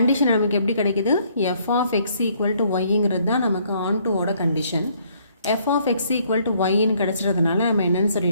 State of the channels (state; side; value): inverted; both; correlation -0.65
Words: நமக்கு எப்படி கிடைக்குது? f of x equal to yங்கிறது தான் நமக்கு ஆன்2ஓட கண்டிஷன். f of x equal to yன்னு கிடச்சிறதுனால நம்ம என்னென்னு